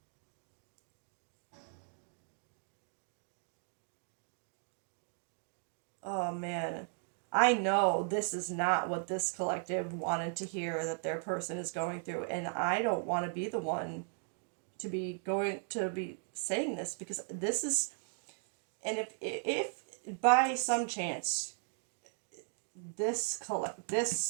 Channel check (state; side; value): silent; left; 53 dB below the other